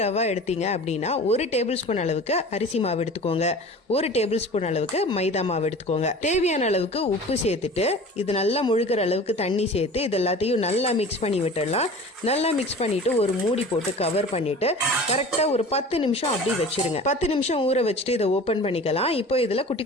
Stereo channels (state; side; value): normal; both; correlation 0.39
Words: ரவை எடுத்தீங்க அப்படின்னா 1 டேபிள் ஸ்பூன் அளவுக்கு அரிசி மாவு எடுத்துக்கோங்க. 1 டேபிள் ஸ்பூன் அளவுக்கு மைதா மாவு எடுத்துக்கோங்க. தேவையான அளவுக்கு உப்பு சேர்த்துட்டு இது நல்லா முழுகிற அளவுக்கு தண்ணி சேர்த்து இது எல்லாத்தையும் நல்லா மிக்ஸ் பண்ணி விட்டுடலாம். நல்லா மிக்ஸ் பண்ணிவிட்டு ஒரு மூடி போட்டு கவர் பண்ணிவிட்டு கரெக்டாக ஒரு 10 நிமிஷம் அப்படி வச்சிருங்க. 10 நிமிஷம் ஊற வச்சுட்டு இதை ஓப்பன் பண்ணிக்கலாம். இப்போ இதில் குட்டி